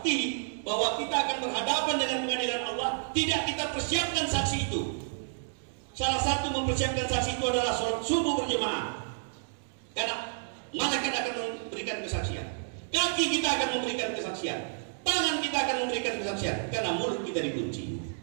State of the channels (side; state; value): left; silent; digital silence